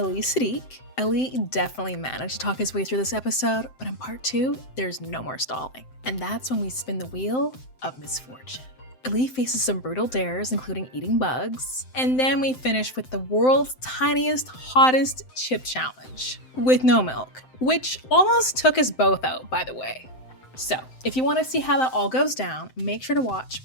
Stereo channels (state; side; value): late; right; 7.8 ms